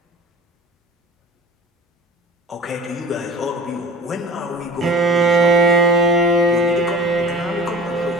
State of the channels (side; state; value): both; normal; correlation 0.42